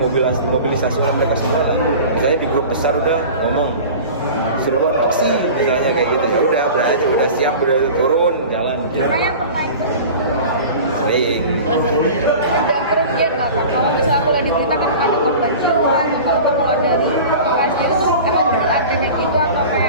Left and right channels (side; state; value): both; inverted; correlation -0.37